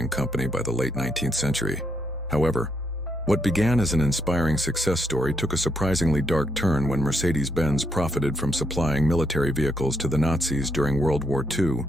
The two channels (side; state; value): both; normal; correlation 0.77